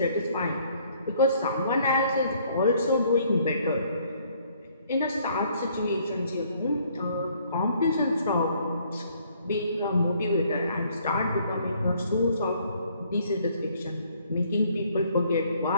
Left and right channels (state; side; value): inverted; both; correlation -0.63